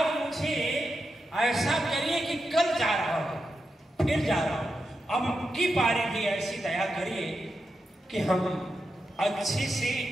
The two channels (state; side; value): normal; both; correlation 0.88